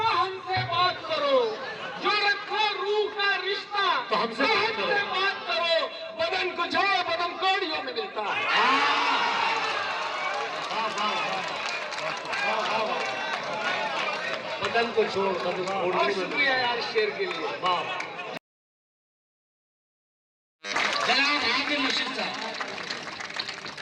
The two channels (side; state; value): both; identical; correlation 1.00